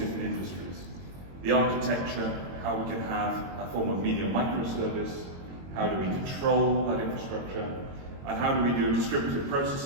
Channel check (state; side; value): late; left; 22 ms